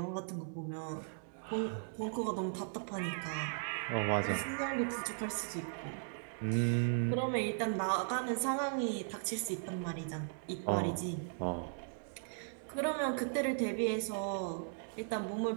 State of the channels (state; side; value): silent; left; digital silence